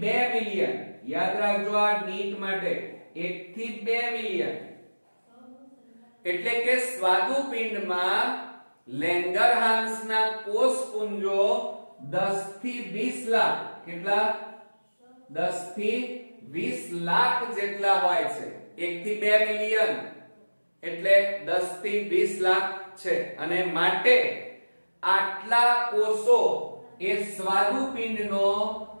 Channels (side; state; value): both; inverted; correlation -1.00